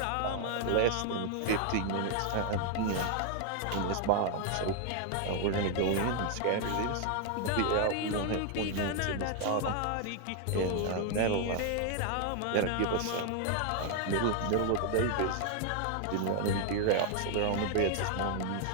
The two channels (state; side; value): different; both; correlation 0.00